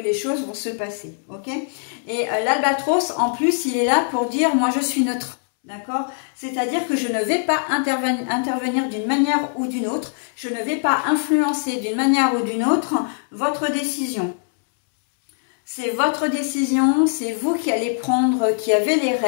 choses vont se passer, ok? Et l'albatros, en plus, il est là pour dire moi je suis neutre. D'accord? C'est-à-dire que je ne vais pas intervenir d'une manière ou d'une autre, je ne vais pas influencer d'une manière ou d'une autre votre décision. C'est votre décision, c'est vous qui allez prendre, qui avez les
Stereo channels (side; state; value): right; silent; 64 dB below the other